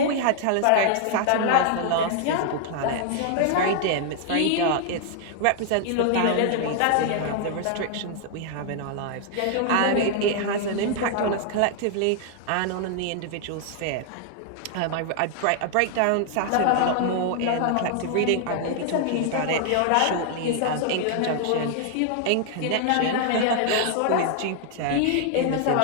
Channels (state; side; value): different; both; correlation 0.00